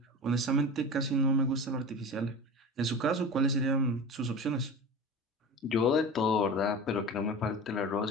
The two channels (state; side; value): normal; both; correlation 0.32